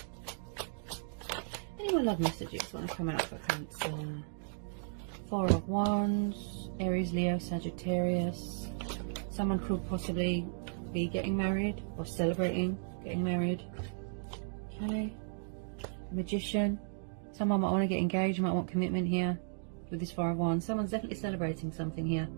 Any more love messages want to come out for Cancer? Four of Wands, Aries, Leo, Sagittarius. Someone could possibly be getting married or celebrating getting married. Okay. Magician. Someone might want to get engaged, might want commitment here with this Four of Wands. Someone's definitely celebrating something here.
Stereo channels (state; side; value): silent; left; digital silence